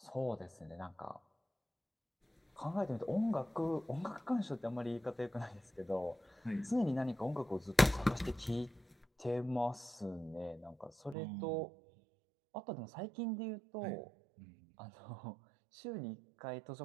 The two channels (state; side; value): drops out; left; at 11.2 s